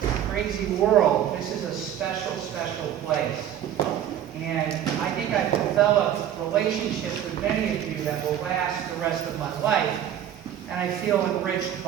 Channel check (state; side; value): quieter; left; 10.5 dB